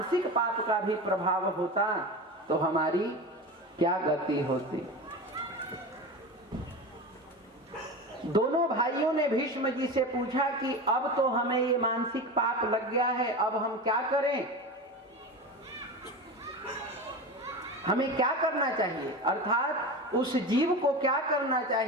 पाप का भी प्रभाव होता तो हमारी क्या गति होती। दोनों भाइयों ने भीष्म जी से पूछा कि अब तो हमें ये मानसिक पाप लग गया है, अब हम क्या करें, हमें क्या करना चाहिए। अर्थात उस जीव को क्या करना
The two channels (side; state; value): both; normal; correlation 0.27